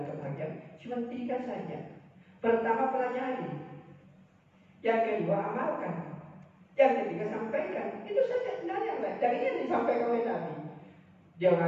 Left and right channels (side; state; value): both; identical; correlation 1.00